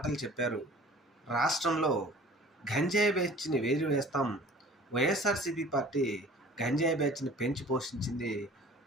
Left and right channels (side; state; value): both; normal; correlation 0.47